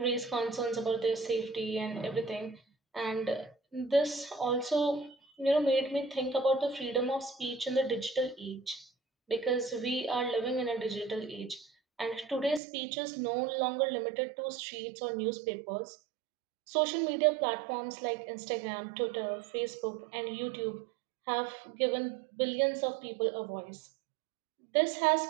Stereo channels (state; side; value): drops out; left; at 12.6 s